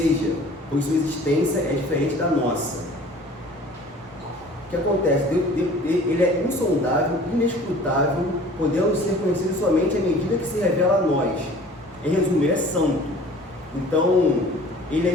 pois sua existência é diferente da nossa. O que acontece? Ele é insondável, inescrutável, podendo ser conhecido somente à medida que se revela a nós. Em resumo, ele é santo. Então, ele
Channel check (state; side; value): normal; both; correlation 0.47